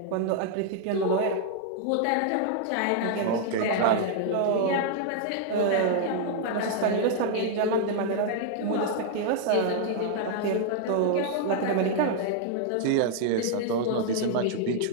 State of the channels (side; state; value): both; different; correlation 0.00